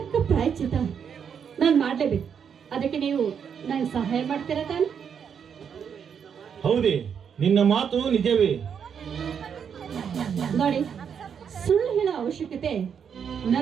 ಪ್ರಾಯಶ್ಚಿತ ನಾನು ಮಾಡ್ಲೇಬೇಕು. ಅದಕ್ಕೆ ನೀವು ನನಗೆ ಸಹಾಯ ಮಾಡ್ತೀರಾ ತಾನೆ? ಹೌದೇ, ನಿನ್ನ ಮಾತು ನಿಜವೇ. ನೋಡಿ, ಸುಳ್ಳು ಹೇಳೋ ಅವಶ್ಯಕತೆ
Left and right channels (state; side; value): quieter; left; 7.4 dB